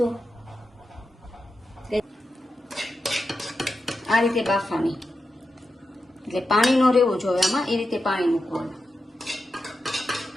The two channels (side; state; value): both; normal; correlation 0.89